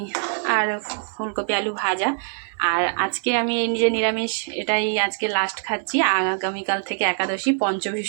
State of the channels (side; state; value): left; silent; 57 dB below the other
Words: আর ফুলকপি আলু ভাজা। আর আজকে আমি নিজে নিরামিষ, এটাই আজকে লাস্ট খাচ্ছি। আগামীকাল থেকে একাদশী,